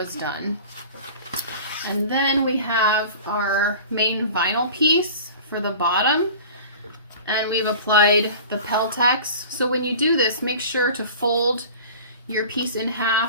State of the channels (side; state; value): both; inverted; correlation -0.40